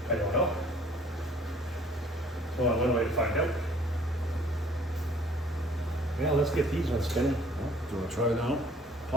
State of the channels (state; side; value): normal; both; correlation 0.56